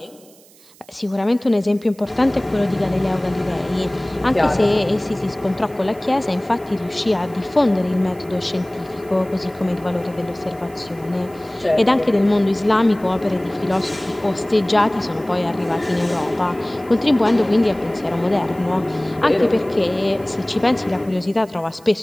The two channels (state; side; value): noise; right; hiss, 26 dB below the sound